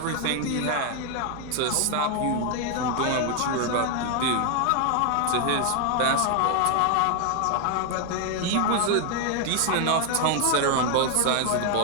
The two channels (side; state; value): both; different; correlation 0.01